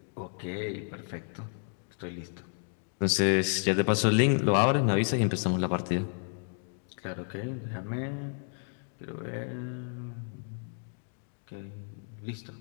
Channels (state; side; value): silent; right; 57 dB below the other